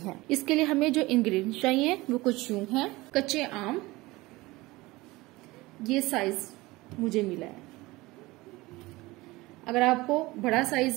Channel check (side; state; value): left; quieter; 20.7 dB